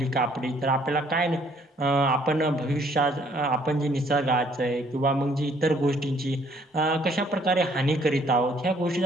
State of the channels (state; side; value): normal; both; correlation 0.63